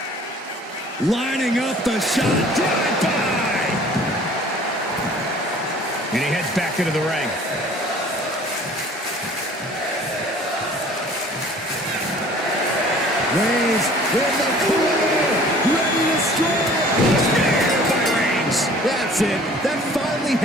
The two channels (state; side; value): normal; both; correlation 0.50